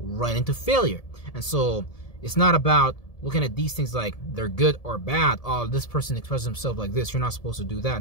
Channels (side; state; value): right; late; 1.7 ms